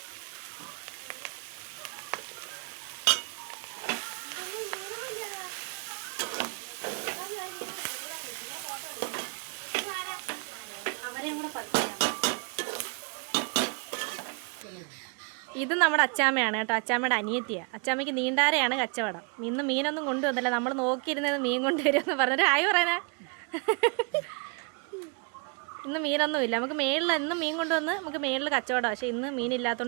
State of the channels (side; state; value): left; quieter; 35.2 dB